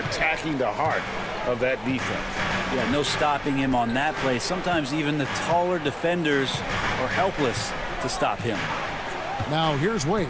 the heart of that defense. Yeah, no stopping him on that play. Sometimes even the taller defenders are helpless to stop him. Now here's Wade.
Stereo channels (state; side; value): noise; right; hum, 25 dB below the sound